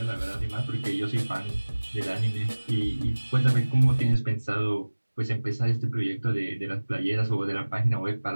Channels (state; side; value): inverted; both; correlation -1.00